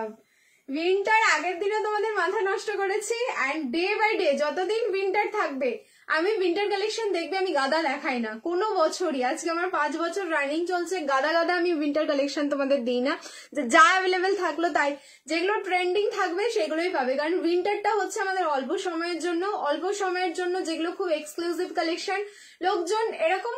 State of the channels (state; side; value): identical; both; correlation 1.00